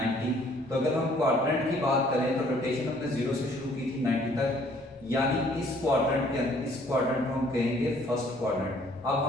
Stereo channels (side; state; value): both; normal; correlation 0.60